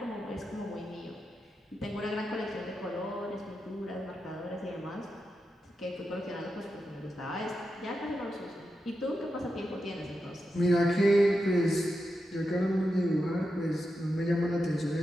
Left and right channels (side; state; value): both; normal; correlation 0.88